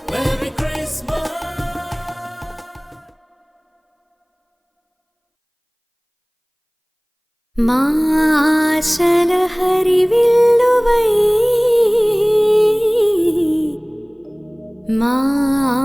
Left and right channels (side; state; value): both; identical; correlation 1.00